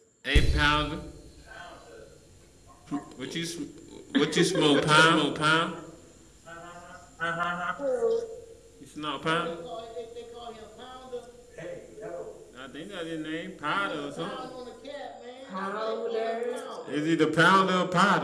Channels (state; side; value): identical; both; correlation 1.00